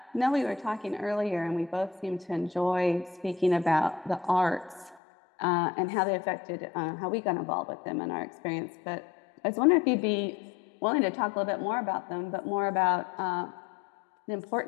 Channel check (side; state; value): right; drops out; at 5.0 s